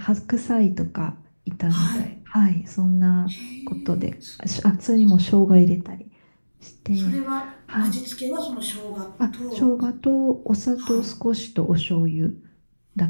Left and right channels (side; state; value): both; inverted; correlation -1.00